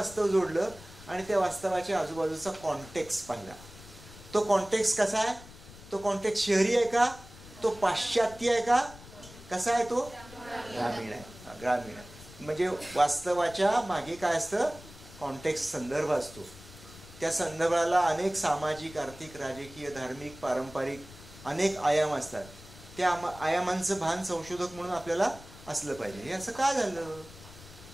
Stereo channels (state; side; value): noise; left; rumble, 18 dB below the sound